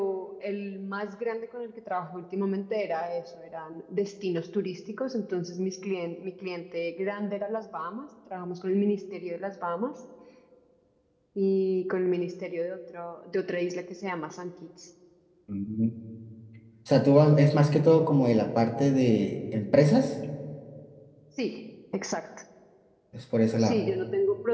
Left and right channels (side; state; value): both; identical; correlation 1.00